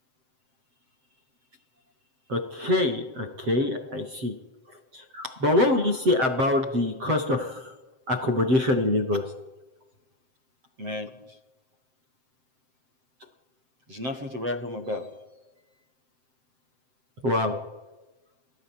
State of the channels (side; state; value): left; late; 7.7 ms